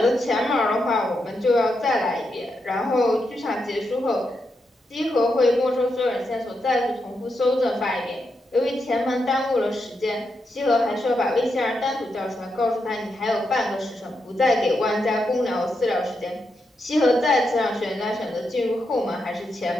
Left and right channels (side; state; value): both; normal; correlation 0.84